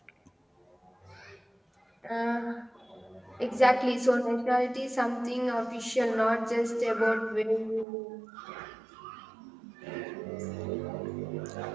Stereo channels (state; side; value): drops out; left; at 7.9 s